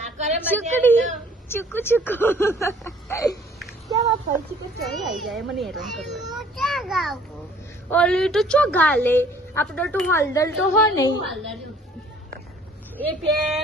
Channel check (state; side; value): normal; both; correlation 0.56